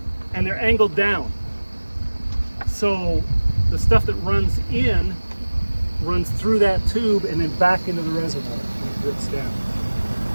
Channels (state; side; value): inverted; both; correlation -1.00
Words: and they're angled down. So the stuff that runs in runs through that tube and then back into the reservoir and it drips down.